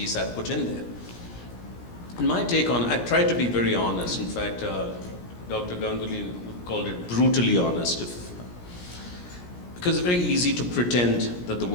I put in there. And my take on, I tried to be very honest. In fact, Dr. Ganguly called it brutally honest. Because it's very easy to pretend that the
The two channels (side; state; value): right; late; 17 ms